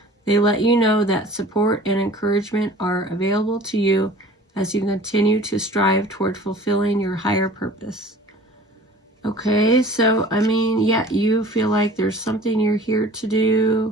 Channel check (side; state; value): both; normal; correlation 0.45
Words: They let you know that support and encouragement are available to you as you continue to strive toward fulfilling your higher purpose. Okay, so, I mean, yeah, you feel like there's something you're here to